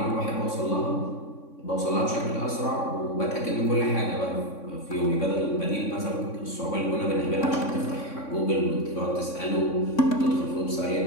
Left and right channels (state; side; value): late; right; 3.6 ms